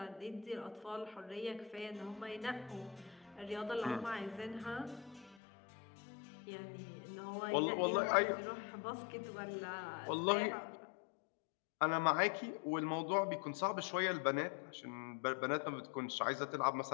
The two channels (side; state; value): right; drops out; at 5.4 s